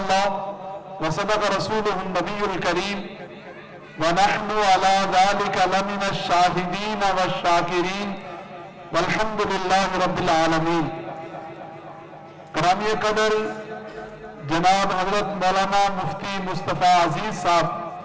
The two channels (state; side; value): identical; both; correlation 1.00